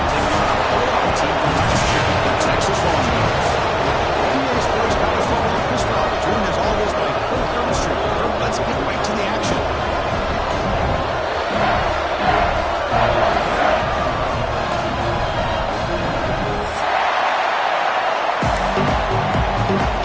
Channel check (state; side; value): identical; both; correlation 1.00